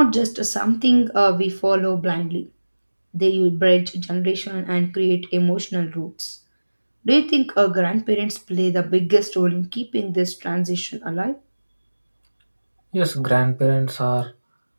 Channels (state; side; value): inverted; both; correlation -1.00